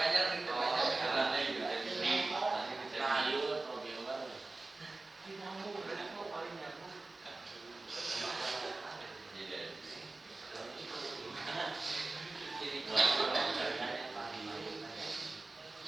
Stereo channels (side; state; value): left; quieter; 3.3 dB